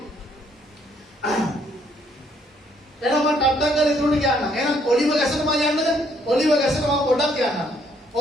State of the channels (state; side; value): normal; both; correlation 0.68